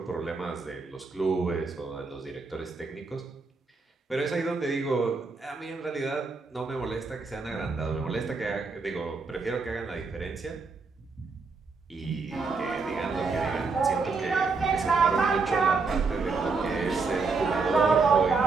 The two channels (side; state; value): left; quieter; 4.3 dB